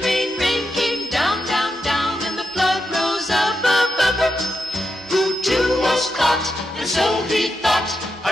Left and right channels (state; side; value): normal; both; correlation 0.86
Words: rain, rain came down, down, down, and the flood rose up, up, up, up. Who too was caught, and so he thought, I